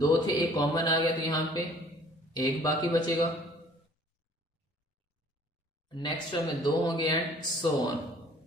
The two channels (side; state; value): both; normal; correlation 0.55